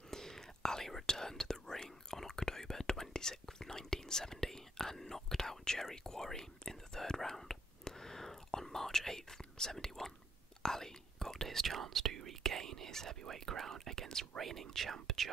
Ali returned to the ring on October 26, 1970, and knocked out Jerry Quarry in the 3rd round. On March 8, 71, Ali got his chance to regain his heavyweight crown against reigning champ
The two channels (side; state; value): both; normal; correlation 0.73